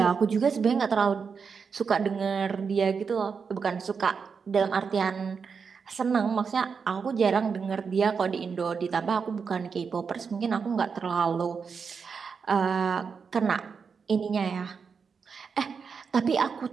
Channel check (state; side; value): quieter; left; 5.8 dB